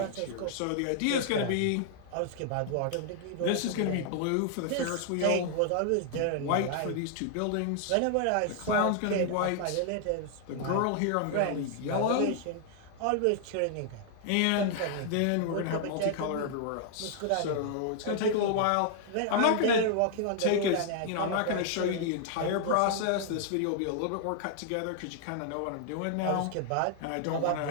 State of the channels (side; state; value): both; different; correlation 0.00